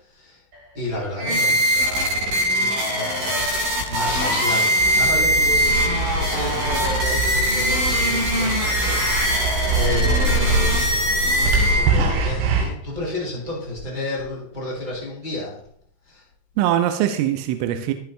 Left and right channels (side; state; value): left; late; 16 ms